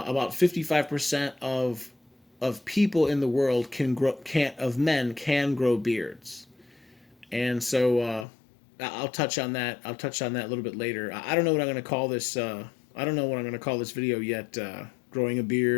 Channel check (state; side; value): drops out; right; at 8.2 s